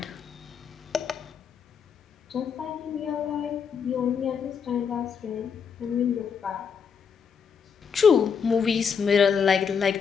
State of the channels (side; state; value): right; quieter; 6.7 dB